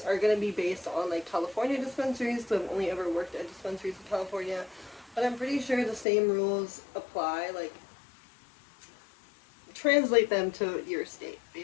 are going to be based on like California dispensaries, so I've only ever worked at dispensaries in California, but I'm pretty sure the same rules apply. Like, translate them to your state,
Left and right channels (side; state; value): right; drops out; at 6.1 s